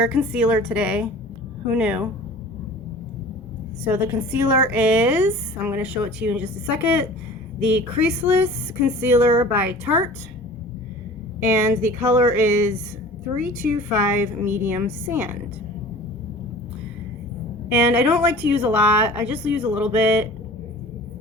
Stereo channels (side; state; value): both; normal; correlation 0.42